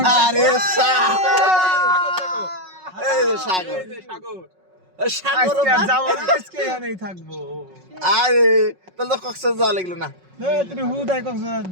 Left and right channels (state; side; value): late; left; 5.4 ms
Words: আরে এই যে সাগর সাগর আজকে আর যাবো না, আজকে এখানেই থাকবো আরে তাহলে তো কক্সবাজার যাওয়া লাগলো না তুই হুদাই কক্সবাজার